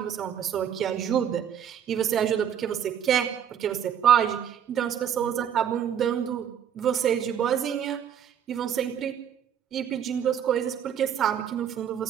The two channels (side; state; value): left; quieter; 9.0 dB